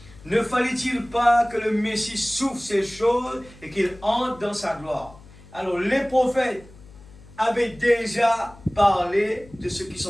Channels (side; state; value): left; noise; hum, 22 dB below the sound